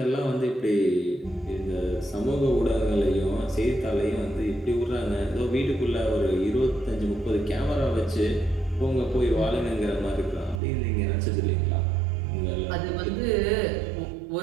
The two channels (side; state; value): left; drops out; at 10.6 s